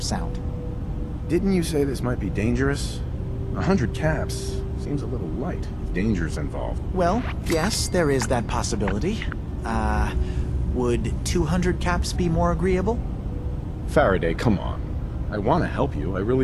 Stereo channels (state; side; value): identical; both; correlation 1.00